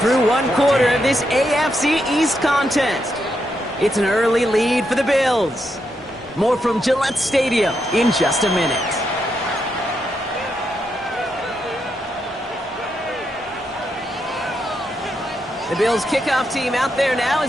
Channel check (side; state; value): both; normal; correlation 0.82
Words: one quarter of this AFC East contest. It's an early lead for the Bills. More from Gillette Stadium in just a minute. The Bills kickoff team out there now